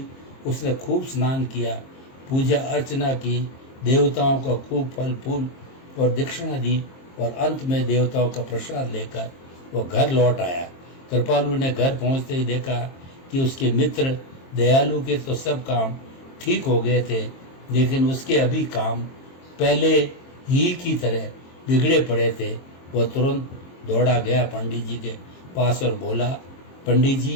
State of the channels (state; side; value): late; right; 22 ms